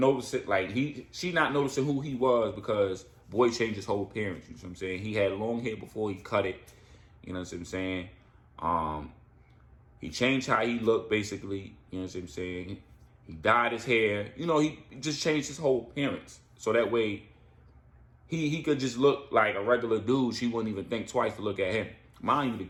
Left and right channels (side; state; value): both; identical; correlation 1.00